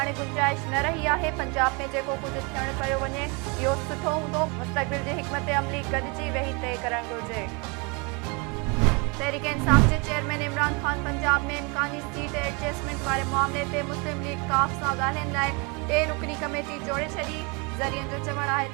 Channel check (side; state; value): left; quieter; 30.7 dB